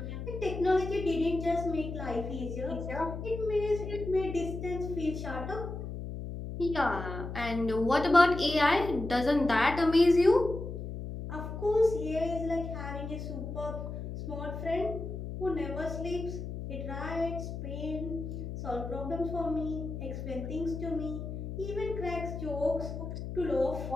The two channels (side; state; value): left; noise; hum, 7 dB below the sound